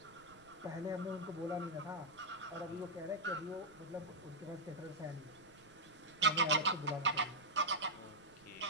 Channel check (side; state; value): right; noise; rumble, 26 dB below the sound